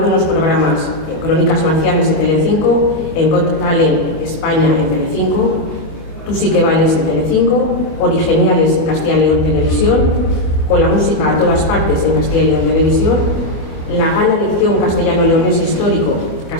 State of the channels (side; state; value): right; late; 24 ms